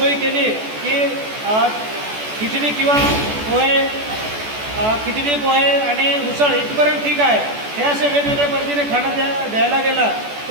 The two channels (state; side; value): late; left; 14 ms